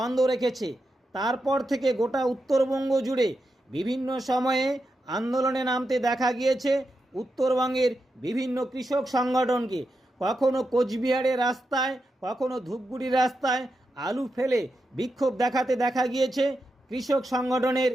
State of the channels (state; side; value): normal; both; correlation 0.87